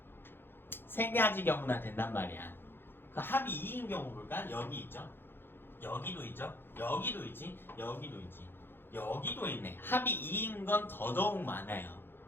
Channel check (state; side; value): late; right; 0.10 ms